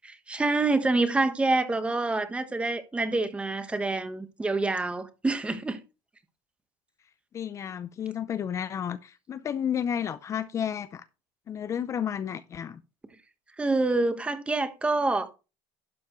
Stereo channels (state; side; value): normal; both; correlation 0.79